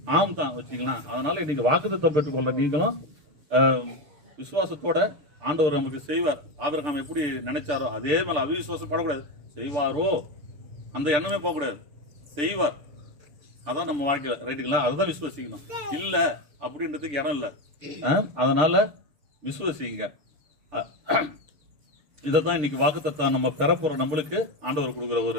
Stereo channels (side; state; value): left; late; 6.8 ms